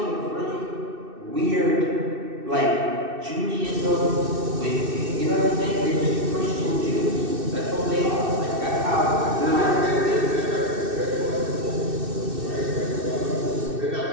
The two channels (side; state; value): left; late; 2.6 ms